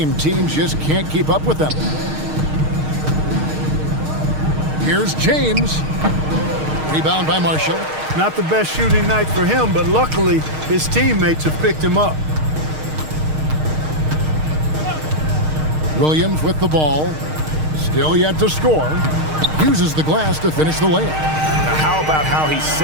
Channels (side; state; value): left; late; 6.5 ms